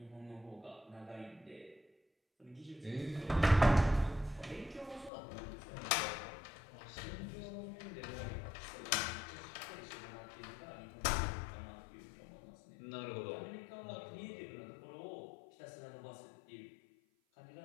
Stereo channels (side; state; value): right; drops out; at 5.1 s